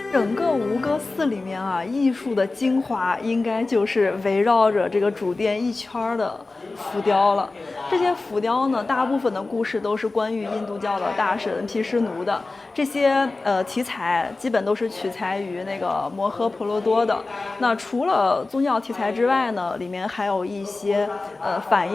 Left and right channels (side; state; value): right; quieter; 3.4 dB